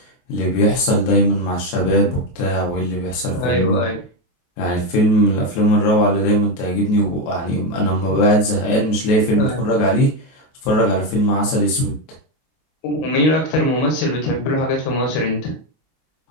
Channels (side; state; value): right; late; 23 ms